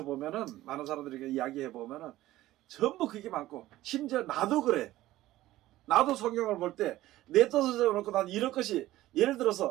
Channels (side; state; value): left; quieter; 15.8 dB